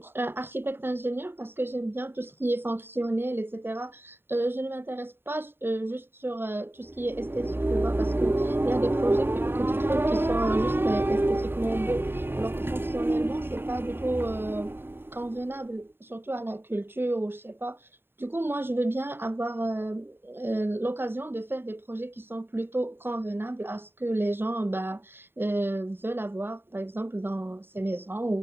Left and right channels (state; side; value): late; left; 0.11 ms